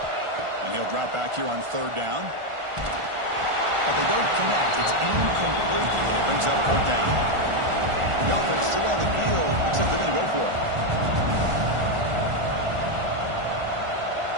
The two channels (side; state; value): left; late; 1.4 ms